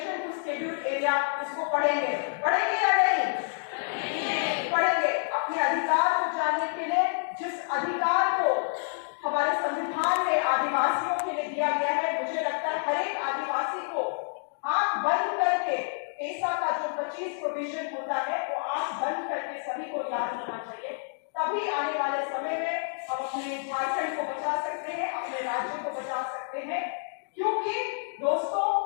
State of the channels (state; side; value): silent; right; digital silence